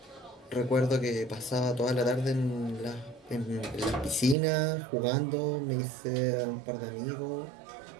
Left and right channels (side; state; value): left; drops out; at 4.4 s